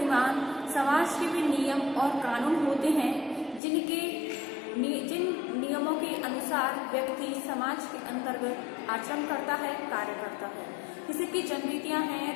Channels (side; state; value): right; drops out; at 3.6 s